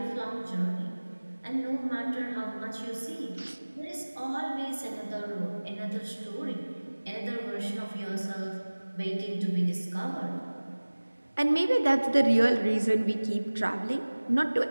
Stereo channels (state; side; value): inverted; both; correlation -1.00